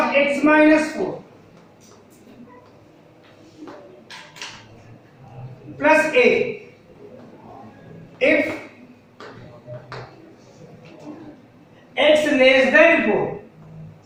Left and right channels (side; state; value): both; identical; correlation 1.00